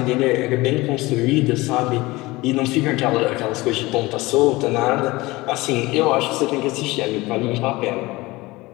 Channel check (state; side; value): quieter; right; 21.0 dB